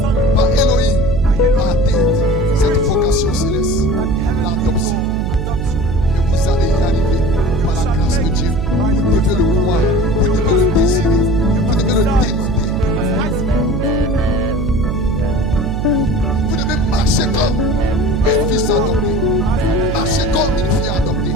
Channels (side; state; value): right; noise; hum, 2 dB below the sound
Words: par Elohim à atteindre cette vocation céleste, l'adoption. Et vous allez y arriver par la grâce de Dieu. Vous devez le croire, vous devez le désirer, vous devez le demander. Vous devez marcher comme un fils adopté, marcher comme une fille adoptée,